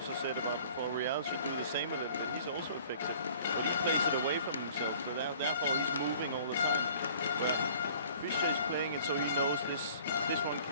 said about before. Rijal should do the same a little bit. He's also effective, but he plays it away from himself. So therefore, he's moving all the time. Where Fischer is playing it so he knows this one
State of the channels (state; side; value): inverted; both; correlation -0.52